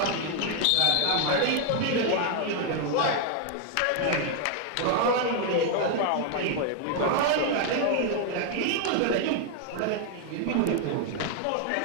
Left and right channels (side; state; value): both; different; correlation 0.00